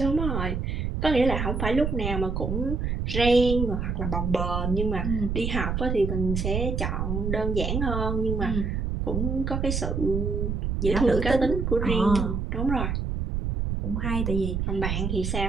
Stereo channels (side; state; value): right; noise; rumble, 1 dB below the sound